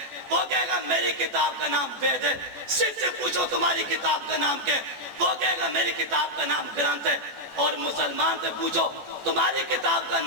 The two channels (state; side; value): late; left; 14 ms